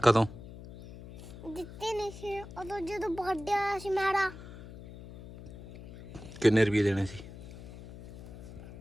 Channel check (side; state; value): left; noise; hum, 15 dB below the sound